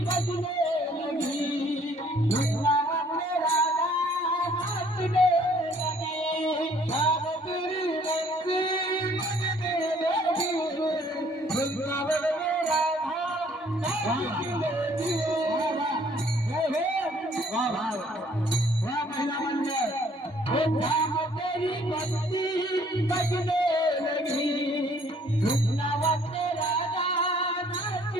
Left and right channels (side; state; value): both; normal; correlation 0.60